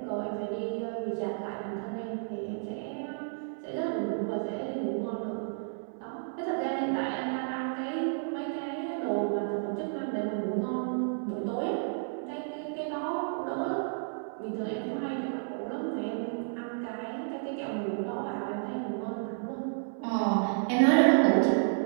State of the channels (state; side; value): silent; left; 57 dB below the other